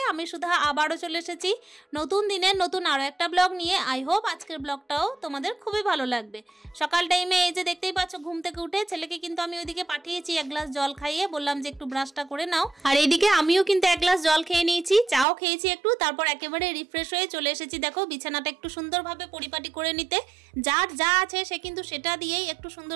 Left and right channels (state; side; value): drops out; left; at 15.2 s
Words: আমি সুধা আবারও চলে এসেছি নতুন দিনের নতুন আরও একটা ব্লগ নিয়ে। আই হোপ আজকের ব্লগটাও তোমাদের খুবই ভালো লাগবে। সকাল টাইমে এই যে দেখতেই পাচ্ছ ঘুম থেকে উঠে ছেলেকে কিন্তু আমি ওইদিকে পাঠিয়েছি এক গ্লাস জল খাইয়ে, বললাম যে একটু ব্রাশটা করে নাও। আর এইদিকে আমিও কিন্তু এক গ্লাস জল খেয়ে নিয়েছি, চাও খেয়েছি একটু, তারপর একেবারে রিফ্রেশ হয়ে চলে এসেছি। দেখো বিছানাটা একটু সুন্দরভাবে পরিপাটি করে নিতে। যার যা আছে সে কিন্তু সেটা দিয়েই একটু